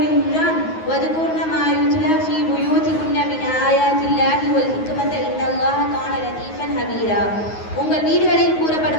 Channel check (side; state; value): right; late; 9.4 ms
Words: வதுகுர்ன மா யுத்லா ஃபீ புயூதிகுன்ன மின் ஆயாத்தில்லாஹி வல் ஹிக்மத இன்னல்லாஹ கான லதீஃபன் ஹபீரா. உங்கள் வீடுகளில்